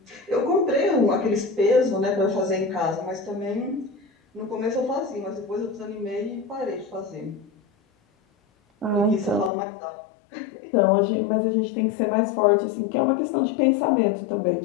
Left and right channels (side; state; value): right; drops out; at 9.5 s